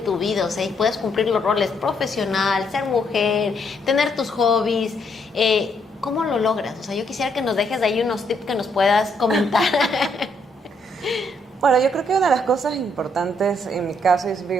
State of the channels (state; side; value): normal; both; correlation 0.73